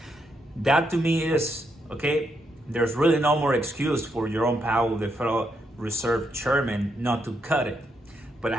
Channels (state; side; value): normal; both; correlation 0.79